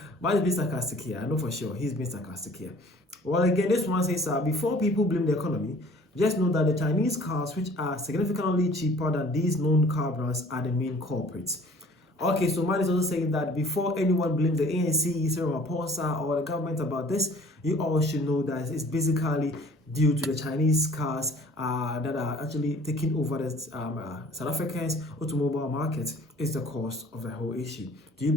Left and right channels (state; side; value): normal; both; correlation 0.52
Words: Man is being sarcastic here. I know for sure he's being sarcastic here. Well, again, this one says, before people blame the economy, just know that the Chinese cars, which are significantly cheaper than these known car brands, are the main culprits. Okay, so man is also saying that before anyone blames the ANC, Cyril Ramaphosa, or the government about this, you all should know that it's basically due to the Chinese cars that are actually taking over the South Africans' automobile market is the cause of the whole issue. Do you